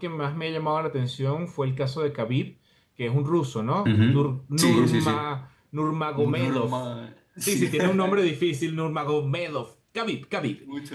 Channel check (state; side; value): identical; both; correlation 1.00